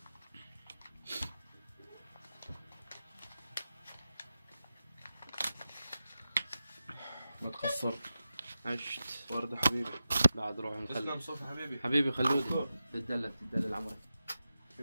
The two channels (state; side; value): inverted; both; correlation -0.92